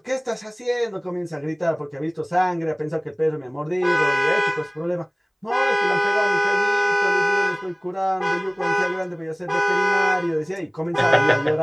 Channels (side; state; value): both; identical; correlation 1.00